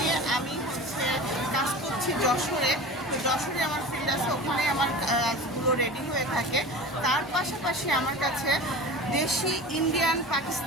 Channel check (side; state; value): both; normal; correlation 0.35